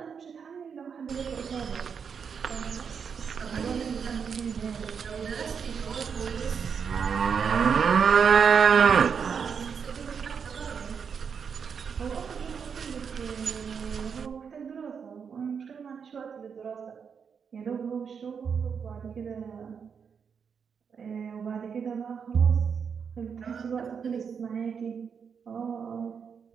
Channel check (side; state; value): left; quieter; 6.6 dB